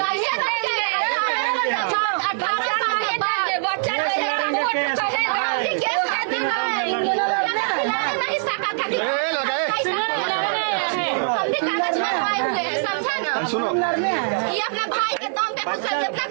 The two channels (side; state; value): left; silent; 64 dB below the other